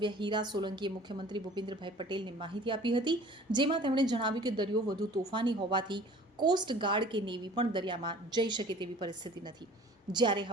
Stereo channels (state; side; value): normal; both; correlation 0.47